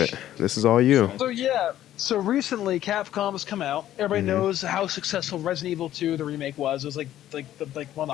This is all you. So recently, Capcom has come out. Everybody knows how successful Resident Evil 2, the remake, was. It was like one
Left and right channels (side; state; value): right; quieter; 12.5 dB